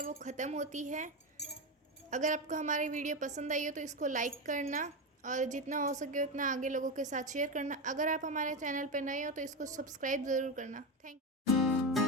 वो ख़त्म होती है। अगर आपको हमारी वीडियो पसंद आई हो तो इसको लाइक करना और जितना हो सके उतना आगे लोगों के साथ शेयर करना। अगर आप हमारे चैनल पर नए हो तो इसको सब्सक्राइब ज़रूर करना। Thank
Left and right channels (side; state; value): both; normal; correlation 0.15